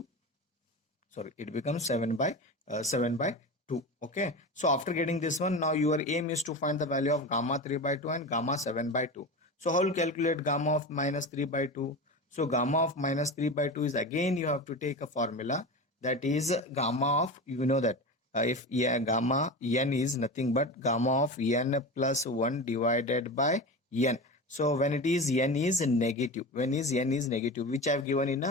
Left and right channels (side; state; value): both; normal; correlation 0.27